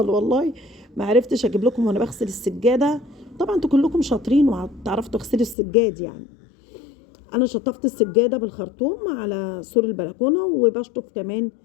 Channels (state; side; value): drops out; right; at 5.6 s